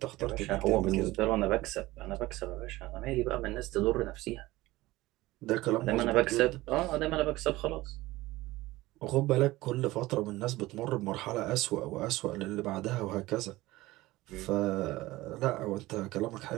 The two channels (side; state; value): left; quieter; 18.5 dB